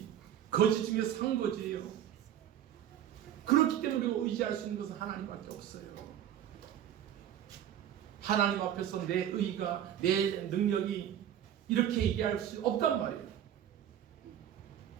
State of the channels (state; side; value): quieter; left; 10.6 dB